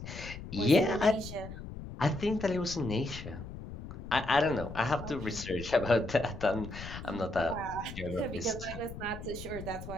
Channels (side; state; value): left; noise; rumble, 10 dB below the sound